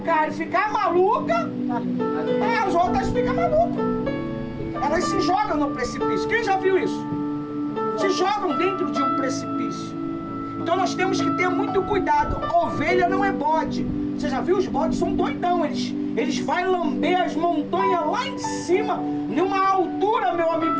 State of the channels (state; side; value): identical; both; correlation 1.00